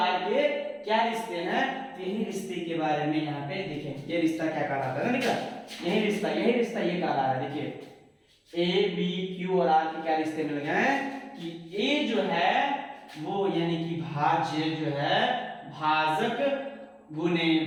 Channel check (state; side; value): identical; both; correlation 1.00